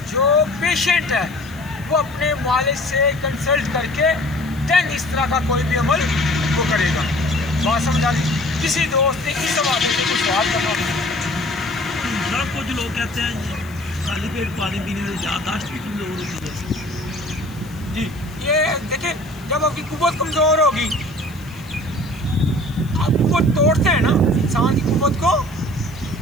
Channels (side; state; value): left; noise; hiss, 23 dB below the sound